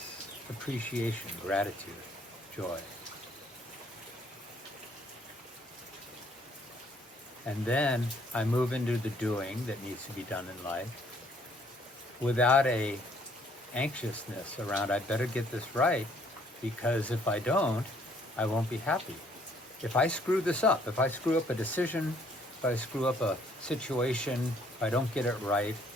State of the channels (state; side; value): normal; both; correlation 0.63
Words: appreciation, gratitude, joy. And then I move into the doing that needs to be done in life without a anxiousness around, I better get this right, because if I don't, I won't be happy. If I screw this up, if I screw up a decision, if I screw up a situation, if I don't get it right,